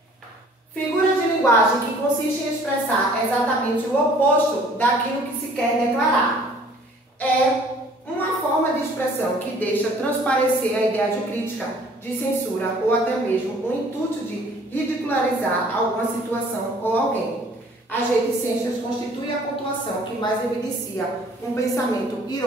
Figura de linguagem que consiste em expressar exatamente o oposto daquilo que se quer declarar. É uma forma de expressão que deixa transparecer a ideia de crítica, de censura ou até mesmo o intuito de ridicularizar alguma situação ou alguém. As reticências constituem a pontuação que mais evidencia um pensamento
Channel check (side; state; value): both; normal; correlation 0.55